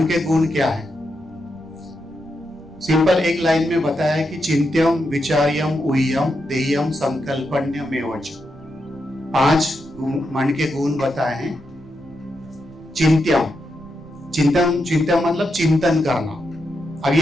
के गुण क्या है? सिंपल एक लाइन में बताया है कि चिंत्यम विचार्यम उह्यम देयम संकल्पन्यमेवच। 5 मन के गुण बताए हैं। चिंत्यम, चिंतन मतलब चिंतन करना। अब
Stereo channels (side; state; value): right; noise; rumble, 22 dB below the sound